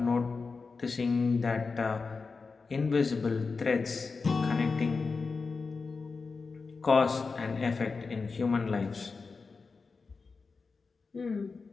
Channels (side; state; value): right; quieter; 4.5 dB